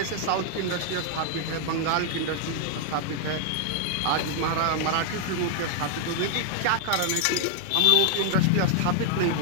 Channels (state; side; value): different; both; correlation 0.00